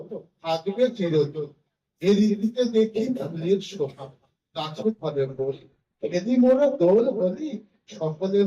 থাকবে চিরদিন। এই ঋতুতে দেখি ফুলের শোভা গাছে ফলে ফুল। এদি মোরা দোল হলি সকলে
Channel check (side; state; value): both; identical; correlation 1.00